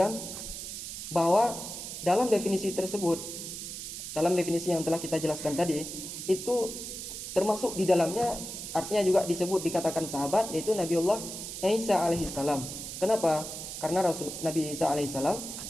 bahwa dalam definisi tersebut, dalam definisi yang telah kita jelaskan tadi, itu termasuk di dalamnya artinya juga disebut dikatakan sahabat, yaitu Nabiullah Isa alaihissalam. Kenapa? Karena Nabi Isa alaihissalam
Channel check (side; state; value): right; noise; hiss, 8 dB below the sound